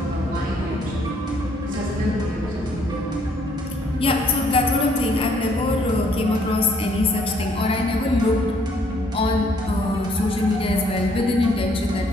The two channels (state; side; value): normal; both; correlation 0.66